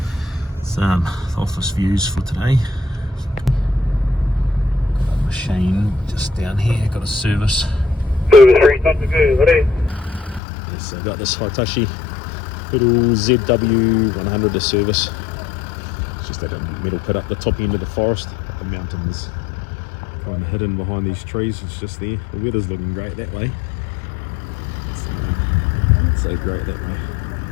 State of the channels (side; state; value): right; drops out; at 10.4 s